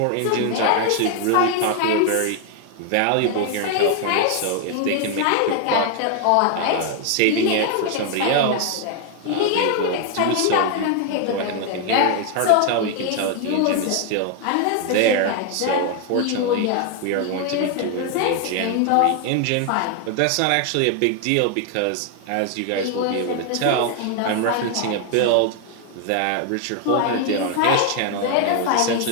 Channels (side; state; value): both; different; correlation 0.00